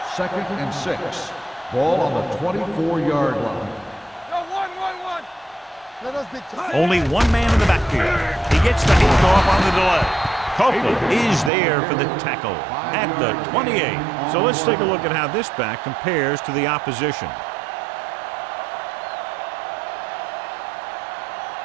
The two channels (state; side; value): drops out; left; at 11.5 s